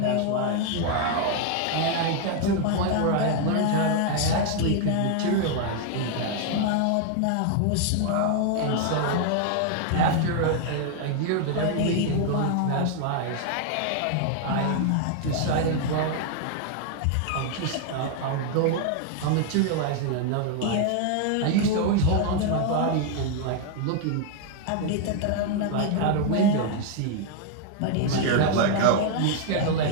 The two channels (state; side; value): different; both; correlation 0.00